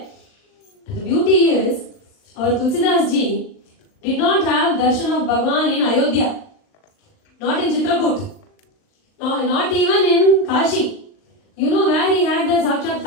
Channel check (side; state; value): right; late; 39 ms